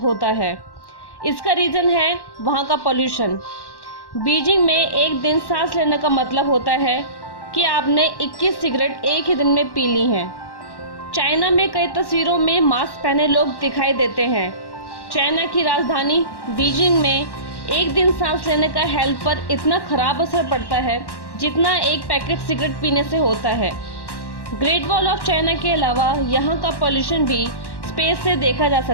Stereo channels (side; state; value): right; late; 1.1 ms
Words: है। इसका रीजन है वहाँ का पोल्यूशन। बीजिंग में एक दिन सांस लेने का मतलब होता है कि आपने 21 सिगरेट एक ही दिन में पी ली हैं। चाइना में कई तस्वीरों में मास्क पहने लोग दिखाई देते हैं। चाइना की राजधानी बीजिंग में एक दिन सांस लेने का हेल्थ पर इतना खराब असर पड़ता है जितना एक पैकेट सिगरेट पीने से होता है। ग्रेट वॉल ऑफ चाइना के अलावा यहाँ का पोल्यूशन भी स्पेस से देखा जा